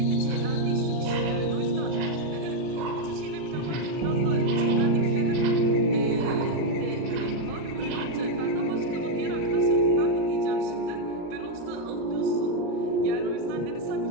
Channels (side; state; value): left; late; 40 ms